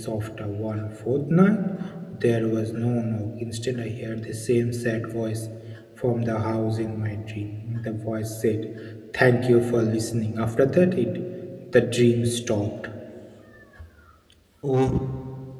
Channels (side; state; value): both; identical; correlation 1.00